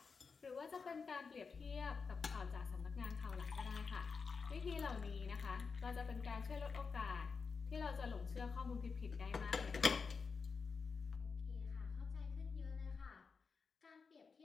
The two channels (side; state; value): right; quieter; 5.1 dB